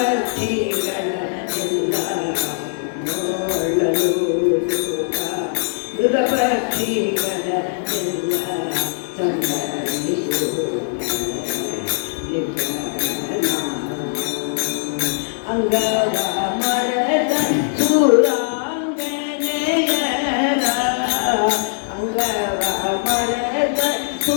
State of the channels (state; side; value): silent; right; digital silence